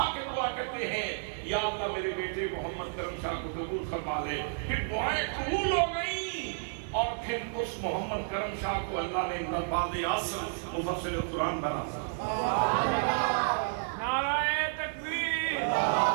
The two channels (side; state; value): left; silent; digital silence